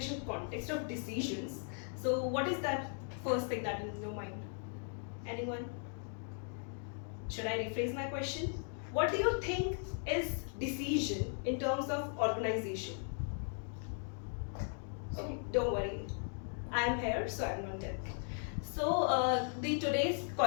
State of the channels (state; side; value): silent; right; 53 dB below the other